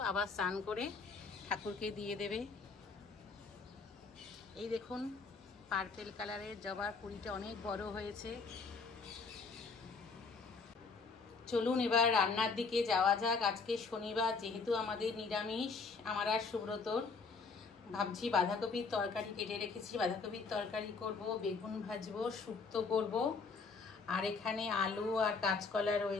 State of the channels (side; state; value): right; quieter; 4.6 dB